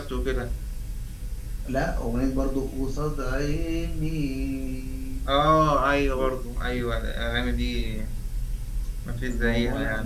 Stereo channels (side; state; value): both; identical; correlation 1.00